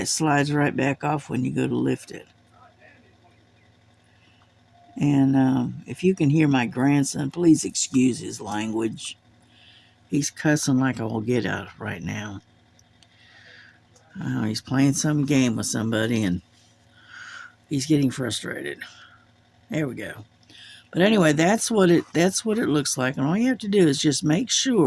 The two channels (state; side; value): identical; both; correlation 1.00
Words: slides right back off when you go to lift it. And if you can hear my grandson, please excuse his language. He's cussing like I will get out right now. He's playing some game with somebody and he's getting frustrated. There we go. But anyway, that's what it looks like. And all you have to do is just make